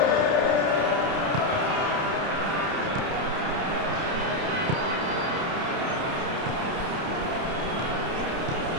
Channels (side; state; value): left; late; 30 ms